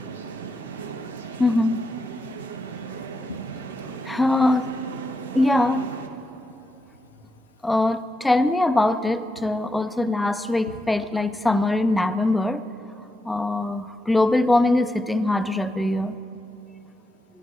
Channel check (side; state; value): both; normal; correlation 0.86